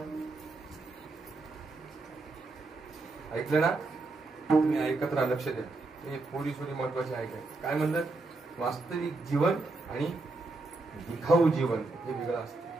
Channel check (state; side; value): quieter; left; 3.3 dB